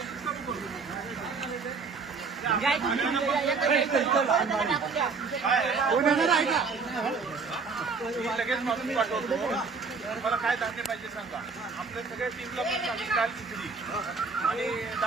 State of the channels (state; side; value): quieter; left; 4.7 dB